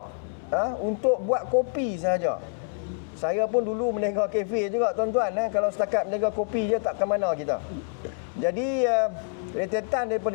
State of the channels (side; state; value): right; silent; digital silence